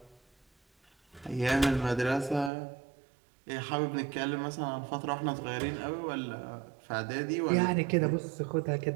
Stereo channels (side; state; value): left; drops out; at 2.5 s